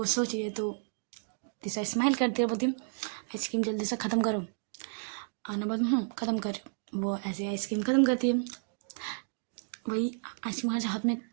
सोच रही है, तो तीसरा स्माइल करती है, बोलती आइसक्रीम जल्दी से ख़त्म करो। आना बोल ख़त्म कर, वो ऐसे आइसक्रीम ख़त्म करती है। वही आइसक्रीम हाथ में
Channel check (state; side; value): silent; left; digital silence